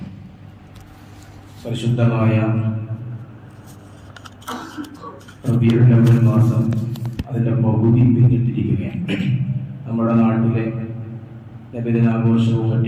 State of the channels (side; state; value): both; identical; correlation 1.00